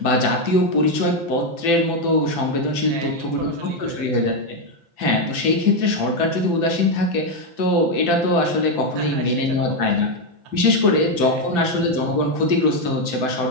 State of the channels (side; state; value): left; late; 5.9 ms